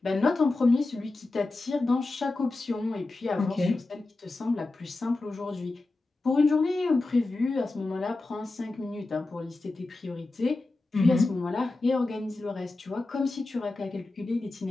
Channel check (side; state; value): right; quieter; 3.2 dB